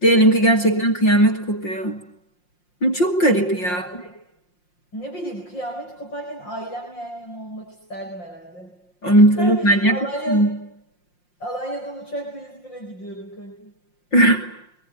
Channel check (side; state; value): right; late; 5.6 ms